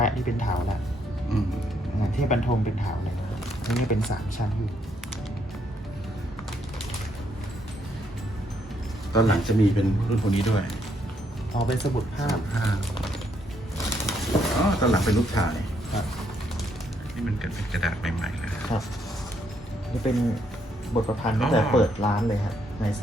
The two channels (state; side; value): normal; both; correlation 0.73